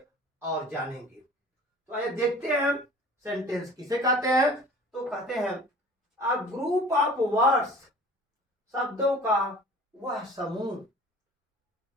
और जानेंगे। तो आइए देखते हैं सेंटेंस किसे कहते हैं। तो कहते हैं अ ग्रुप ऑफ वर्ड्स, शब्दों का वह समूह।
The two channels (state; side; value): normal; both; correlation 0.45